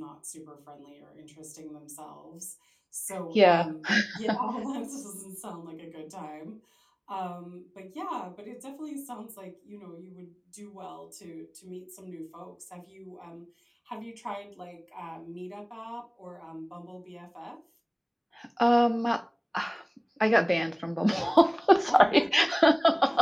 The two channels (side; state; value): both; identical; correlation 1.00